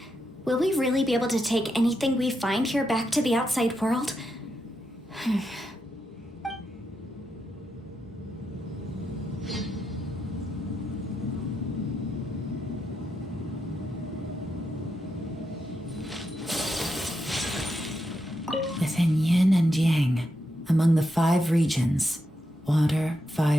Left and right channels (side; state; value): both; normal; correlation 0.84